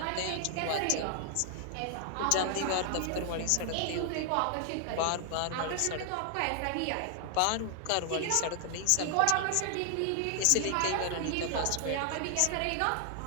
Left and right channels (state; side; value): different; both; correlation 0.00